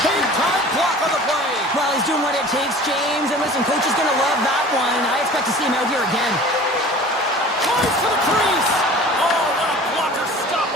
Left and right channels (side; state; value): both; normal; correlation 0.43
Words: Big time block on the play. Well, he's doing what it takes, James. And listen, coach is going to love that one. I expect to see him out here again. Drives to the crease. Oh, what a blocker stop